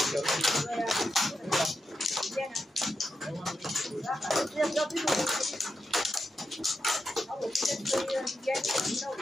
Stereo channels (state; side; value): normal; both; correlation 0.87